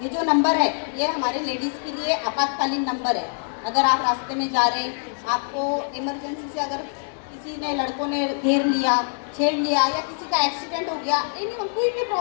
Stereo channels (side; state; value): right; silent; digital silence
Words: ये जो नंबर है ये हमारे लेडीज़ के लिए आपातकालीन नंबर है। अगर आप रास्ते में जा रहे हैं, आपको इमरजेंसी से अगर किसी ने, लड़कों ने घेर लिया, छेड़ लिया, या किसी का एक्सीडेंट हो गया, एनी कोई भी